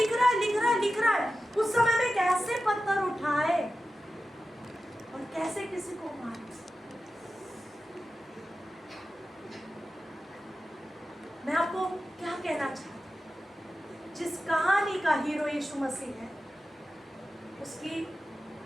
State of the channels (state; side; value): normal; both; correlation 0.93